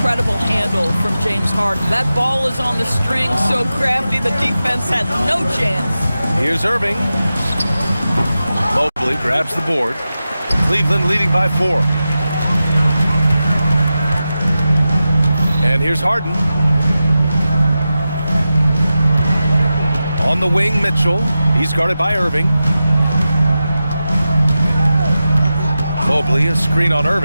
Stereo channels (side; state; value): both; inverted; correlation -0.92